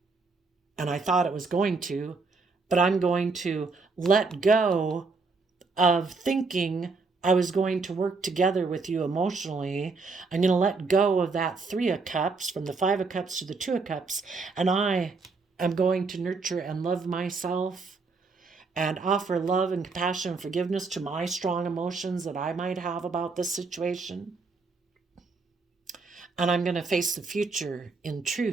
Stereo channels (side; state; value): left; quieter; 4.2 dB